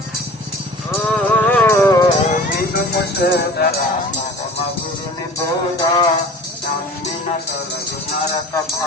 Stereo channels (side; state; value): both; normal; correlation 0.42